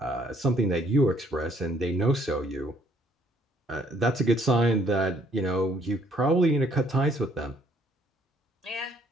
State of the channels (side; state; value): both; normal; correlation 0.64